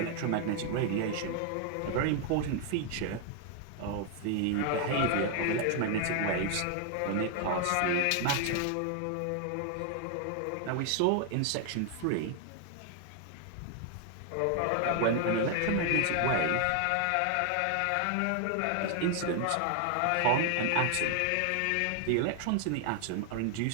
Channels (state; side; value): different; both; correlation 0.00